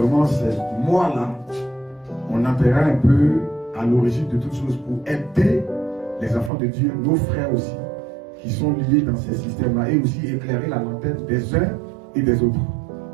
c'est moi-là, on appellera un peu à l'origine de toutes choses pour aider les enfants de Dieu, nos frères aussi, qui sont liés dans ces systèmes-là, et aussi éclairer la lanterne des uns et des autres.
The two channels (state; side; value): drops out; left; at 6.5 s